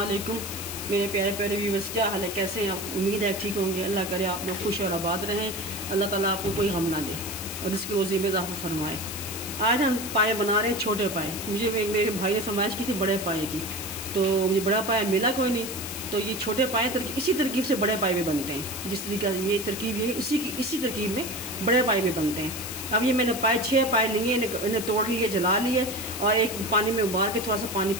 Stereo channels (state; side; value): noise; left; hiss, 7 dB below the sound